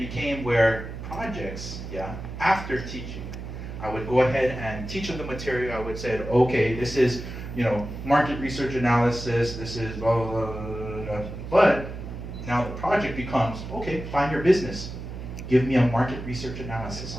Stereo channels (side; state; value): right; noise; hum, 9 dB below the sound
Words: where projects, after teaching, I would go ahead and teach them the material. I would say, okay, this is, market research analysis. This is blah, blah, blah, blah, blah. But now the project becomes, okay, find your business. Give me a market research